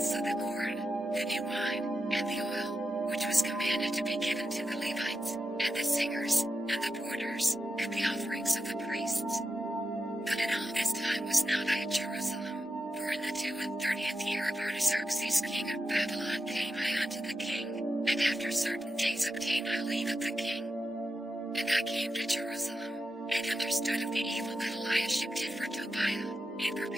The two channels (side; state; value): both; normal; correlation 0.89